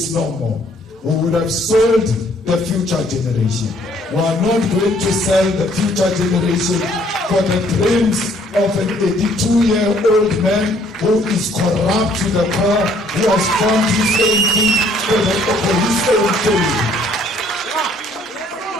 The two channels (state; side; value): normal; both; correlation 0.62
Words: no more. We would have sold the future generation. We are not going to sell the future generation for the dreams of an 82-year-old man who is corrupt to the core, who has found his own thing for his own thing.